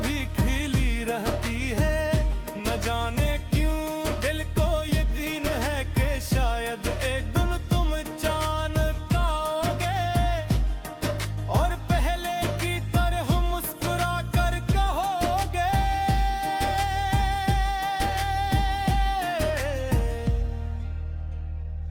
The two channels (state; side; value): identical; both; correlation 1.00